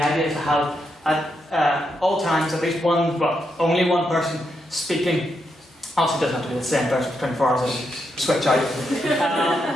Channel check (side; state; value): both; normal; correlation 0.82